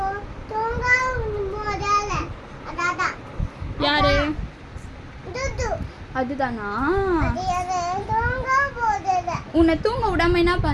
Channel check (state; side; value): identical; both; correlation 1.00